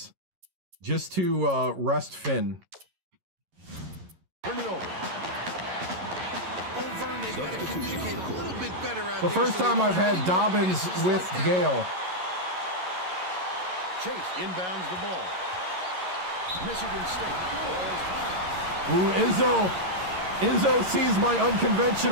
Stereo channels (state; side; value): late; left; 11 ms